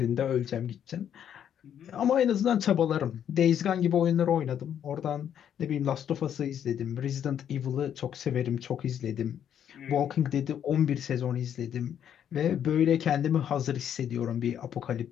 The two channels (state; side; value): quieter; right; 9.4 dB